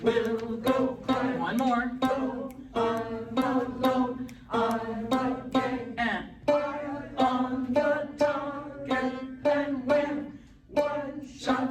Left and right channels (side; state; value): both; identical; correlation 1.00